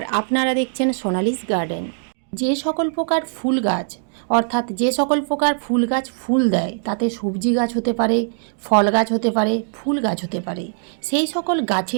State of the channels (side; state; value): left; silent; digital silence